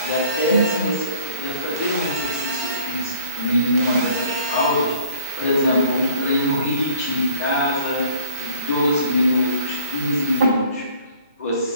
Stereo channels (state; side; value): inverted; both; correlation -0.57